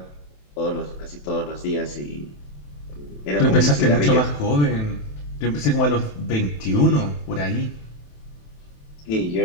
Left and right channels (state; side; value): late; right; 27 ms